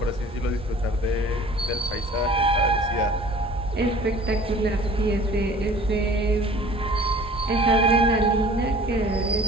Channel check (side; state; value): both; normal; correlation 0.47